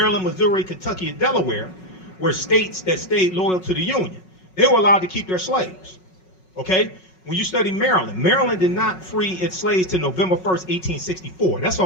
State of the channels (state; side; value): late; right; 5.4 ms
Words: Missouri, Kentucky, and Delaware were states that stayed loyal to the Union. They were allowed to keep their slaves. Okay? When you study Maryland, Maryland did not free its slaves till November 1st, 1864. That's